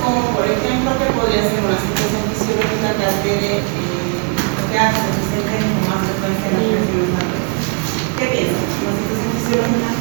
como por ejemplo, que podría ser una situación fisiológica que altere que hace que se presenten con más frecuencia en las reacciones adversas. ¿Qué piensan? ¿Una situación fisiológica?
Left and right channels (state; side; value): quieter; left; 36.2 dB